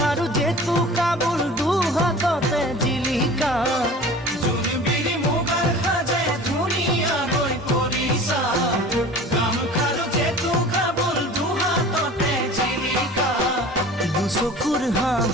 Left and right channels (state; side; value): normal; both; correlation 0.41